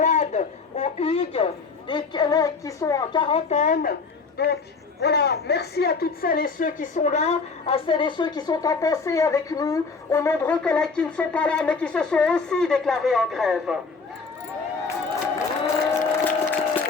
au Hugues, des collègues qui sont en quarantaine. Donc voilà, merci à toutes celles et ceux qui sont là, à celles et ceux qui sont en pensée avec nous, aux nombreux collègues qui ne sont pas là mais qui se sont aussi déclarés en grève.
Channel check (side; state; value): right; quieter; 4.7 dB